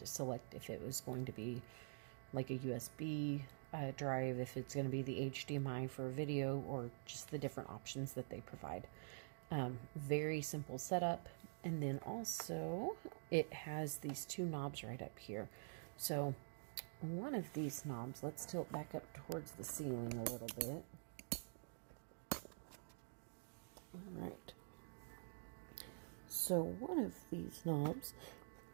select if it was going to be like a USB drive, if it's going to be the HDMI for video, or just the different options that they provide. Very simple setup. And then also it has these two knobs right up here. So one of these knobs, let's tilt back up towards the ceiling a little bit. All right. So one of these knobs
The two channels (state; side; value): silent; left; digital silence